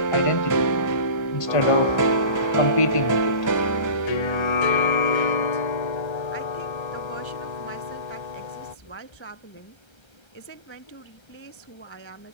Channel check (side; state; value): right; late; 1.3 ms